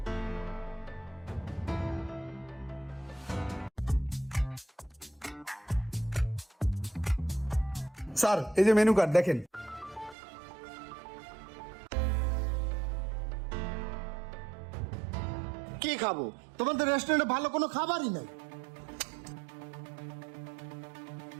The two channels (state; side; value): drops out; left; at 10.2 s